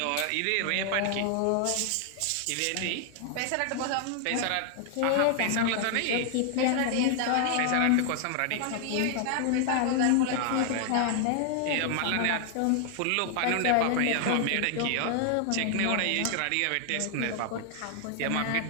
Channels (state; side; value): different; both; correlation 0.00